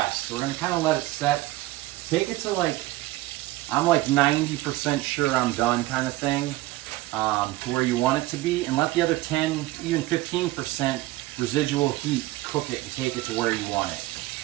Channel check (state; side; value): quieter; left; 18.2 dB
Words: So we're going to kind of let it set. Take it to like, I'm like 90% sure I'm done kind of thing, to where you want it to be, and let the other 10, even 15% residual heat cook it and take it to where you want it.